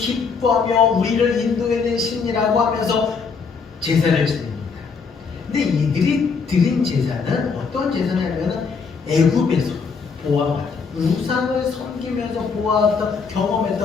우리를 인도해낸 신이라고 하면서 제사를 드립니다. 근데 이들이 드린 제사는 어떤 제사냐면 애굽에서 보아왔던 우상을 섬기면서 보아왔던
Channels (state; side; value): quieter; right; 5.3 dB